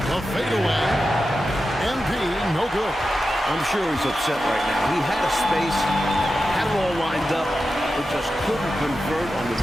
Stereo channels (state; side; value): normal; both; correlation 0.91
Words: The fadeaway. MP, no good. I'm sure he's upset right now. He had a space, had it all lined up, but just couldn't convert on the